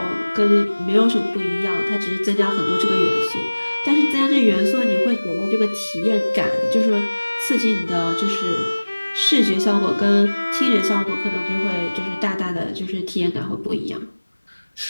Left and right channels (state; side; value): inverted; both; correlation -1.00